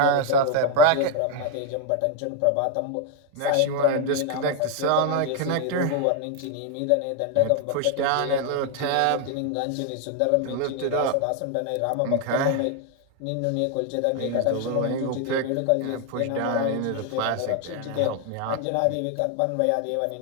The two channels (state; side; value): different; both; correlation 0.00